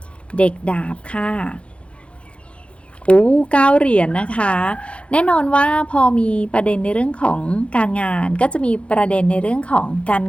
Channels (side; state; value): right; late; 0.060 ms